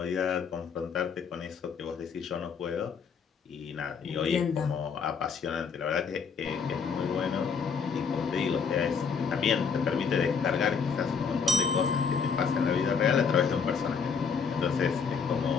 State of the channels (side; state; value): right; quieter; 6.0 dB